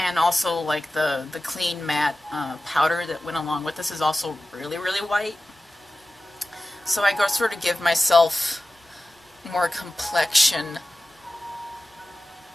also, like, the clean matte powder that went along with this is also really, really white. So I go sort of give myself more complexion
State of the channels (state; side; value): normal; both; correlation 0.95